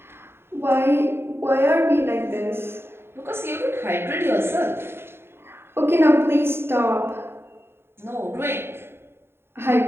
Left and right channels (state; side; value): late; left; 0.11 ms